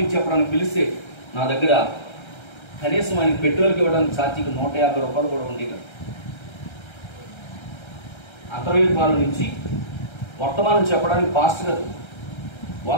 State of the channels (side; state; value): right; late; 1.3 ms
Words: చెప్పడానికి పిలిస్తే నా దగ్గర కనీసం ఆయన పెట్రోల్కి ఇవ్వడానికి ఛార్జీకి 150 రూపాయలు కూడా ఉండేది. అంతర్వేదిపాల నుంచి వర్తమానం చెప్పడానికి పాస్టర్ గారు